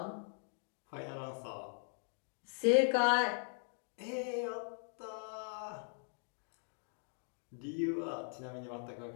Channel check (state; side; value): silent; right; digital silence